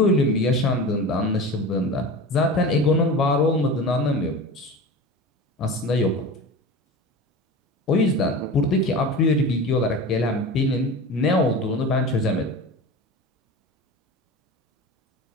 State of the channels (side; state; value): both; normal; correlation 0.31